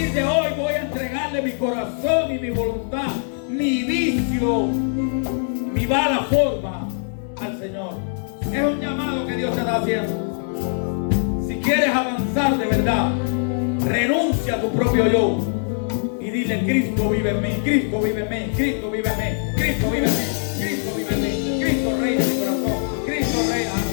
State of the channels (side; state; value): right; silent; 64 dB below the other